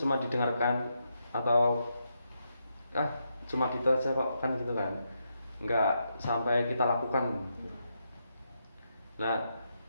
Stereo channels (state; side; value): inverted; both; correlation -0.82